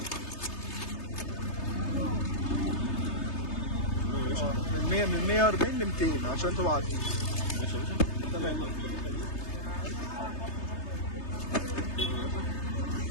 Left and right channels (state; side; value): late; right; 3.3 ms